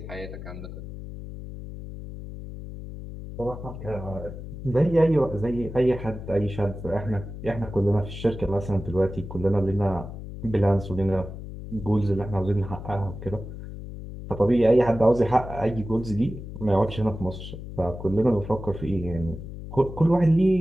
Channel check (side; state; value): left; noise; hum, 10 dB below the sound